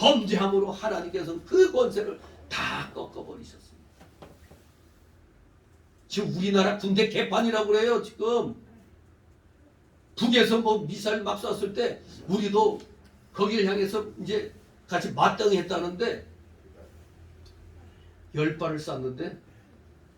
하나님께서는 그 권세를 다 꺾어버리셨습니다. 지금 우리나라 군대 개판이라고 그래요. 지금 북에서 뭐 미사일 막 쐈을 때 우리도 거기를 향해서 이제 같이 마땅했다는데 10발을 쐈는데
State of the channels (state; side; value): identical; both; correlation 1.00